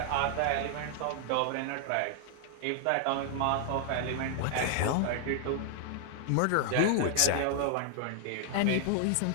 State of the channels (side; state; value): both; different; correlation 0.00